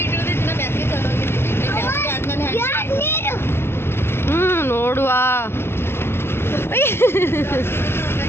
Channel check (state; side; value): late; right; 0.12 ms